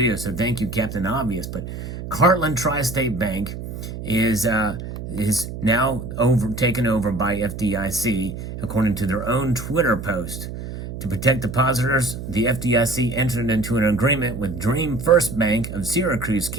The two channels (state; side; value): noise; right; hum, 8 dB below the sound